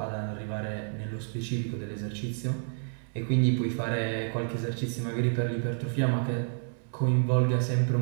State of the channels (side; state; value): left; silent; digital silence